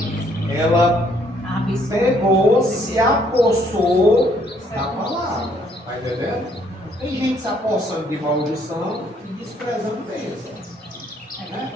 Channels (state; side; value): normal; both; correlation 0.67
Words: Ela Abençoe. pegou, se apossou da palavra. Está entendendo? Tem gente se apossando de maldição e desprezando bênção.